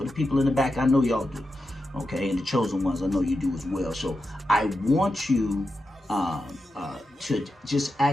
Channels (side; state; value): both; normal; correlation 0.89